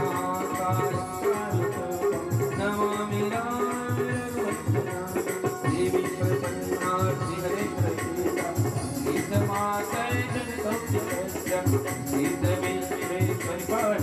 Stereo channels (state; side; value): identical; both; correlation 1.00